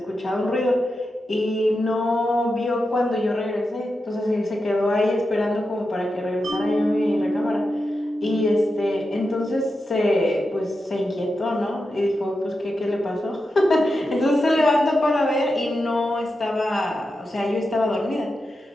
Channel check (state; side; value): normal; both; correlation 0.89